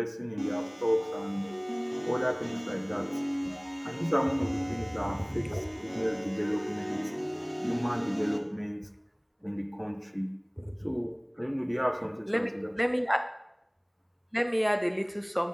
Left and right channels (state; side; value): identical; both; correlation 1.00